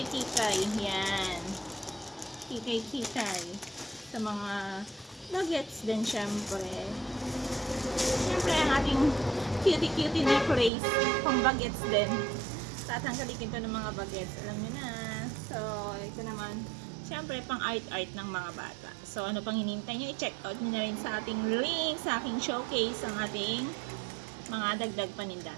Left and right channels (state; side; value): drops out; left; at 10.7 s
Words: Yan. Kikay. Sa mga nuggets din syempre. Syempre ang ating cutie necklace pang bagets din. Tatangkalikin to ng mga bagets. Alam nyo na. So, ito naman, syempre pang art ng mga bata. So, ano pang hinintay nyo? I-check out nyo na rin sa ating link, sa aking showcase, ang ating mga dagdag paninda.